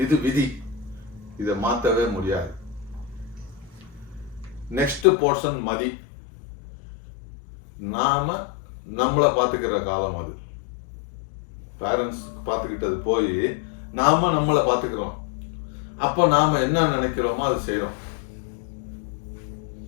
இது விதி, இதை மாற்றவே முடியாது. நெக்ஸ்ட் போர்ஷன் மதி, நாம நம்மளை பார்த்துக்கிற காலம். அது பேரண்ட்ஸ் பார்த்துக்கிட்டது போய் நாம நம்மளை பார்த்துக்கிறோம். அப்போ நாம என்ன நினைக்கிறோமோ அது செய்யறோம்.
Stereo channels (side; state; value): right; drops out; at 5.1 s